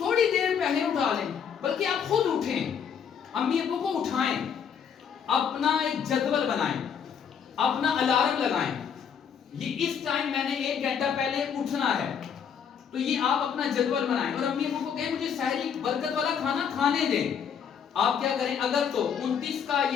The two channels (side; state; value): right; quieter; 7.5 dB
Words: دیر پہلے اٹھا لیں، بلکہ آپ خود اٹھیں. امی ابو کو اٹھائیں، اپنا ایک جدول بنائیں، اپنا الارم لگائیں. یہ اس ٹائم میں نے 1 گھنٹہ پہلے اٹھنا ہے، تو یہ آپ اپنا جدول بنائیں. اور امی ابو کو کہیں مجھے سحری برکت والا کھانا کھانے دیں. آپ کیا کریں، اگر تو 29 کا